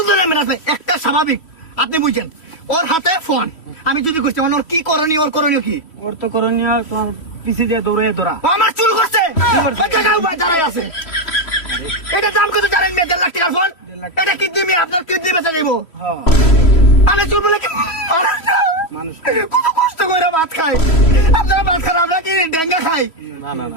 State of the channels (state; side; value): late; right; 3.1 ms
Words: ধরনের মেনাস ভাই? একটা স্বাভাবিক, আপনি বুঝছেন। ওর হাতে ফোন, আমি যদি করছি মানে ওর কি করণীয়, ওর করণীয় কি? ওর তো করণীয় পিছিয়ে দিয়ে দৌড়ে ধরা। ও আমার চুল করছে, ওই জায়গায় ভাই দাঁড়াই আছে। এটা দাম কত জানেন? 1.5 লাখ টাকার ফোন। এটা কিডনি, আপনার কিডনি বেচা যাইব। হ্যাঁ, আমি চুল বলে কি মানুষ না? মানুষ। কত কষ্ট করে ভাত খাই, আপনারা ভাত খান, আমরা কি ডেঙ্গা খাই? না না